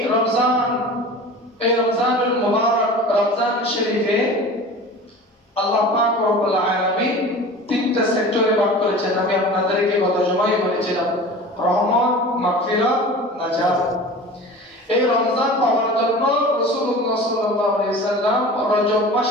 রমজানুল মুবারক, রমজান শরীফে আল্লাহ পাক রব্বুল আলামিন তিনটা সেক্টরে ভাগ করেছেন। আমি আপনাদেরকে গত জুমায় বলেছিলাম, রহমত, মাগফিরাত, নাজাত। এই রমজান পাওয়ার জন্য রাসূলুল্লাহ সাল্লাল্লাহু আলাইহি সাল্লাম রজব মাস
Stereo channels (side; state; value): both; normal; correlation 0.37